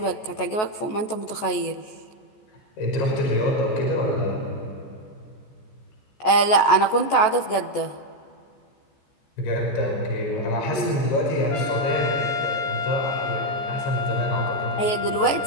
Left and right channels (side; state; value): right; late; 14 ms